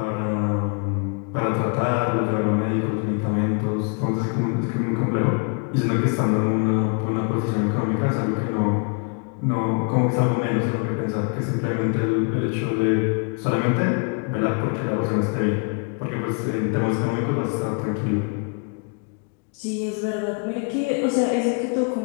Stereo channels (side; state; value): right; quieter; 37.0 dB